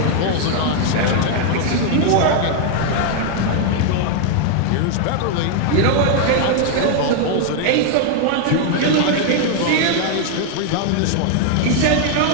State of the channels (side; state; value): both; different; correlation 0.00